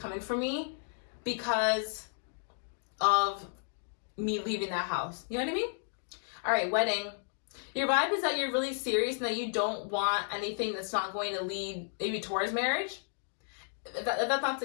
for me because of me leaving that house. You know what I mean? All right, wedding. Your vibe is that you're really serious and that you don't want anything that's not going to lead maybe towards marriage. If that's not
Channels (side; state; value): right; silent; digital silence